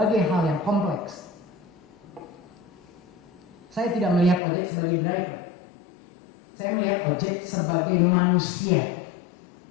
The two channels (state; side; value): drops out; right; at 4.4 s